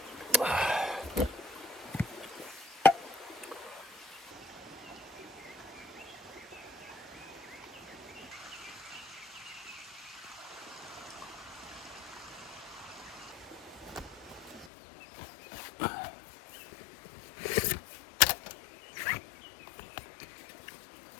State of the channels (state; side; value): drops out; right; at 14.7 s